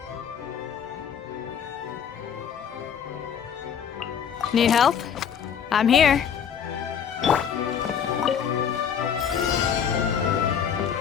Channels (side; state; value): right; quieter; 7.9 dB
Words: Need help? I'm here.